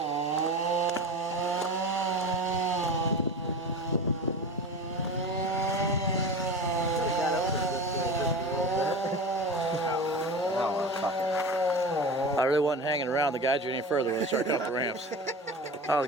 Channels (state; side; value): normal; both; correlation 0.30